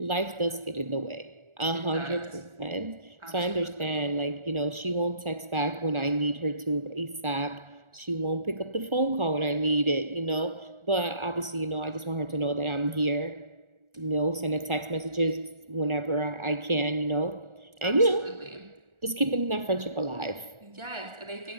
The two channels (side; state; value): left; late; 1.4 ms